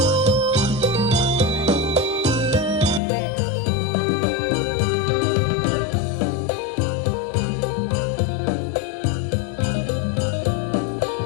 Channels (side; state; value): right; drops out; at 3.0 s